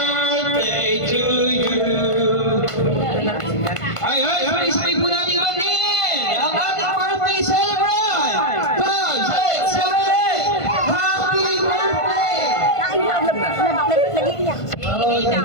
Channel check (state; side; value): late; right; 1.5 ms